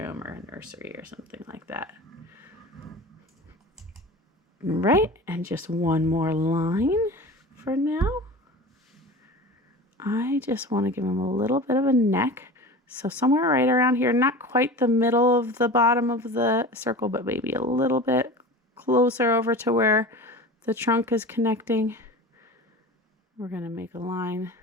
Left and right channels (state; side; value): normal; both; correlation 0.34